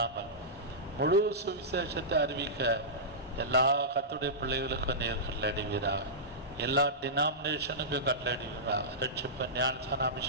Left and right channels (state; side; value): normal; both; correlation -0.15